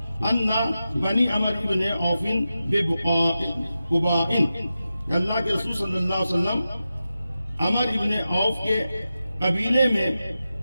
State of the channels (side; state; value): both; inverted; correlation -0.91